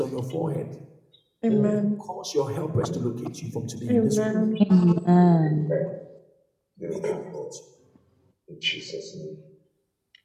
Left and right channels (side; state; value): both; identical; correlation 1.00